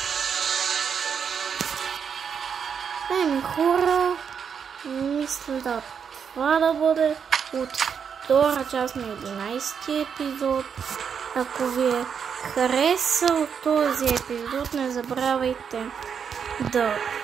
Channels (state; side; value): quieter; left; 7.0 dB